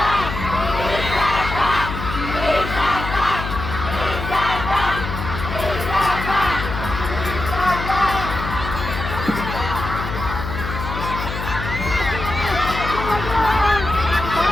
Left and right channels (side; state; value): left; noise; hum, 6 dB below the sound